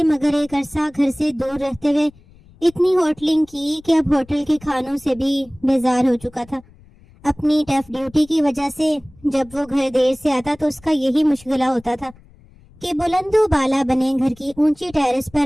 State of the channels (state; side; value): noise; left; rumble, 26 dB below the sound